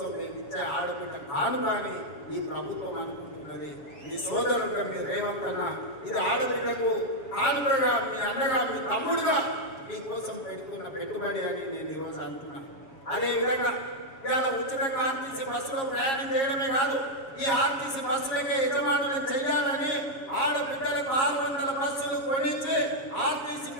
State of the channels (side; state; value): right; late; 7.5 ms